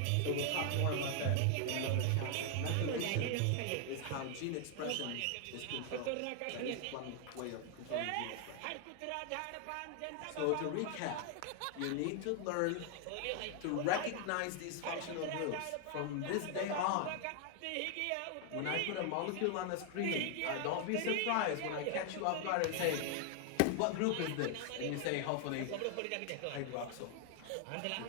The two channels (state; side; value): different; both; correlation 0.00